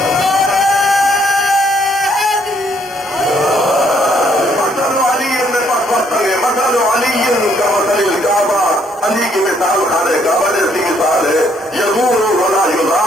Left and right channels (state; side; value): normal; both; correlation 0.68